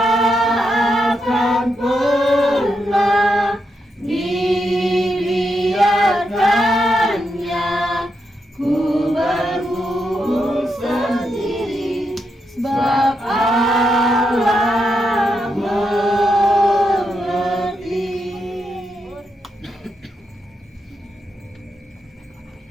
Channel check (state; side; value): normal; both; correlation 0.83